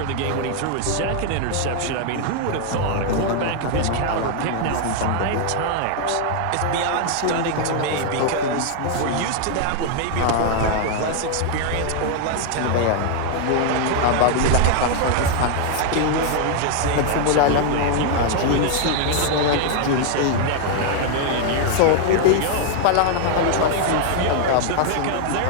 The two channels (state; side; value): different; both; correlation 0.00